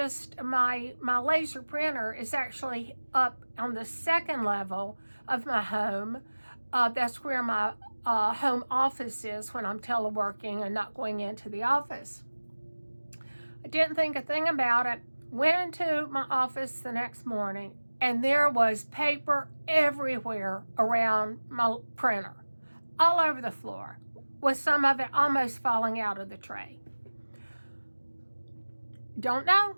laser printer is actually up on the second level of my home. That's where my home office is when I'm teleworking and not going into the office. I didn't think a thing about it. Went into my office the next morning, and there was paper everywhere around my printer, all over the floor, with some of it almost falling out of the tray. Don't know.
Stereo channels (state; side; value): inverted; both; correlation -1.00